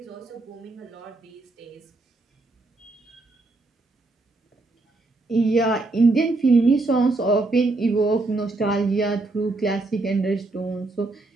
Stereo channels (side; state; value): left; quieter; 3.2 dB